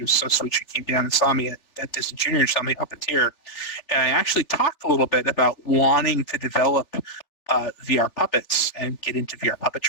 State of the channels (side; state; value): right; late; 3.4 ms